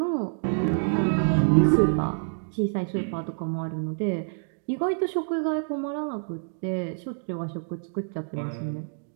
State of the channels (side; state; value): left; silent; digital silence